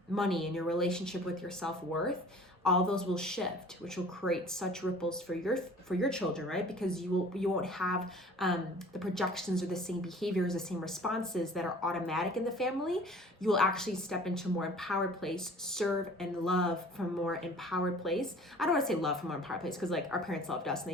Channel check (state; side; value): normal; both; correlation 0.48